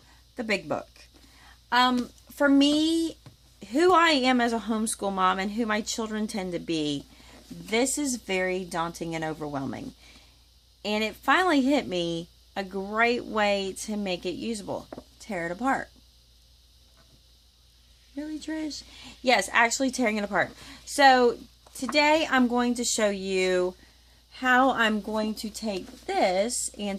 The big book. For me, who I am as a homeschool mom and who my children tend to be, this is very daunting and overwhelming. And it finally hit me a great way to make it usable. Tear it apart. Really, Trish? Yes, actually tearing it apart. So today I'm going to show you how I'm going to take this and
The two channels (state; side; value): identical; both; correlation 1.00